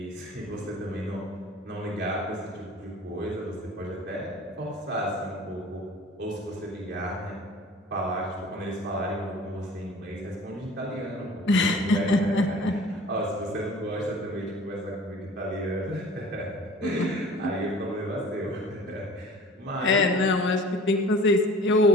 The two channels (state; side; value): normal; both; correlation 0.45